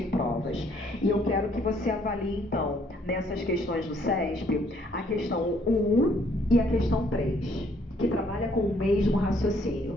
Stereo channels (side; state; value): both; normal; correlation 0.65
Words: provas. E eu quero que você avalie, então, nessas questões do CESP, a questão 1 e a questão 3, que trabalha com o mesmo